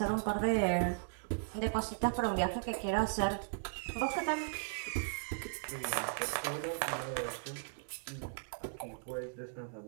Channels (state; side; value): silent; left; digital silence